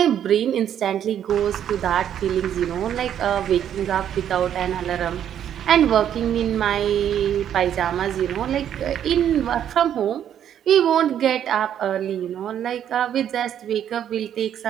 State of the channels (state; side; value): quieter; left; 9.9 dB